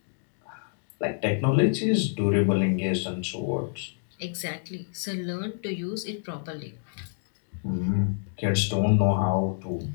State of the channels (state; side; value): silent; right; 57 dB below the other